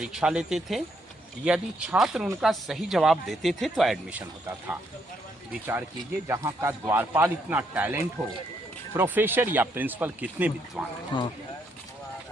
लेते थे, यदि छात्र उनका सही जवाब देते थे तो एडमिशन होता था। विचार कीजिए जहाँ का द्वारपाल इतना टैलेंट हो, प्रोफेसर या प्रिंसिपल कितने विद्वान हैं। हाँ।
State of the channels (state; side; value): normal; both; correlation 0.74